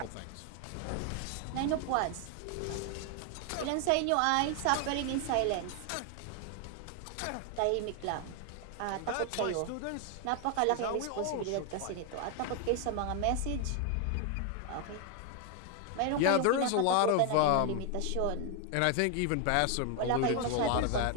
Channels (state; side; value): different; both; correlation 0.01